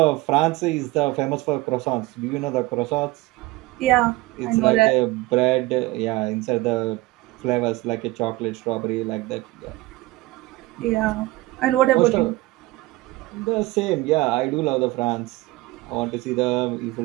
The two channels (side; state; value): left; quieter; 20.1 dB